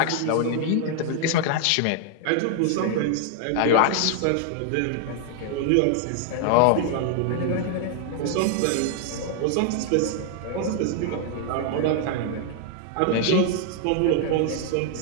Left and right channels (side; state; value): both; different; correlation 0.00